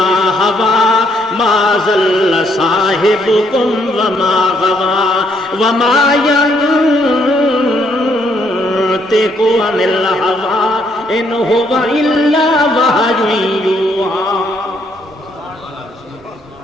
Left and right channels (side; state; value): both; normal; correlation 0.71